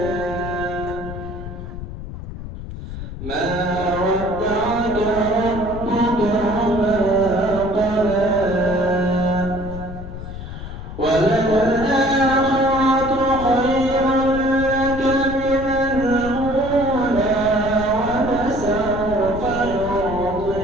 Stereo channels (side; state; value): left; noise; rumble, 10 dB below the sound